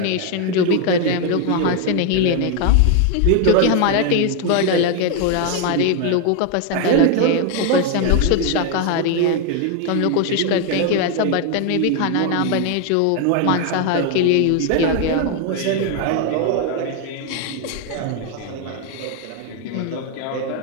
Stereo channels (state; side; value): different; both; correlation 0.01